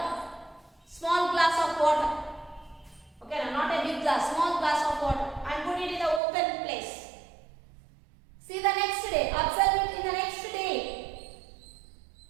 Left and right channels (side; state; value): left; drops out; at 6.2 s